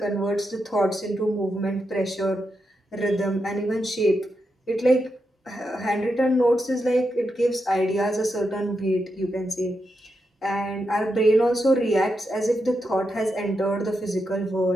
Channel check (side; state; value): both; normal; correlation 0.85